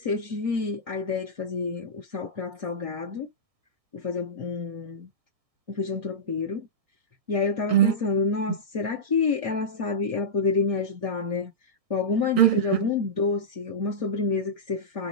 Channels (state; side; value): late; left; 1.6 ms